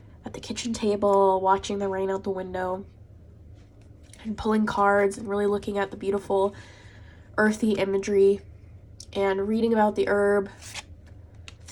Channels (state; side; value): identical; both; correlation 1.00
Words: at the kitchen table, watching the rain out the window and pulling cards and really looking at the beautiful earthy imagery and reading about the herb,